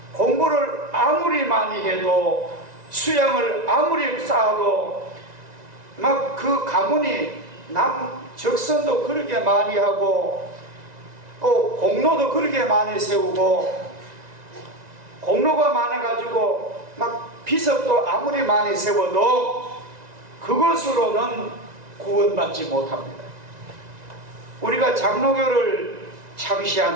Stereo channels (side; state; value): left; late; 1.9 ms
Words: 공부를 아무리 많이 해도, 수양을 아무리 쌓아도, 막 그 가문이 적선도 그렇게 많이 하고 또 공로도 그렇게 많이 세우고, 공로가 많아가지고 막 비석도 아무리 많이 세워도 그것으로는 구원받지 못합니다. 우리가 장로교를